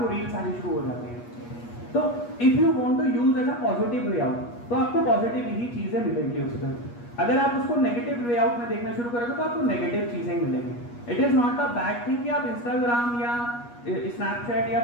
रील्स आनी शुरू हो जाती है। तो if you want to use as a positive way out, तो आपको पॉजिटिव ही चीजें मिलेंगी उसमें। अगर आप उसको नेगेटिव वे आउट में देखना शुरू करोगे तो आपको नेगेटिव चीजें मिलेंगी। It is not a bad thing कि आप इंस्टाग्राम या स्नैपचैट या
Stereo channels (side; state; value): right; late; 8.4 ms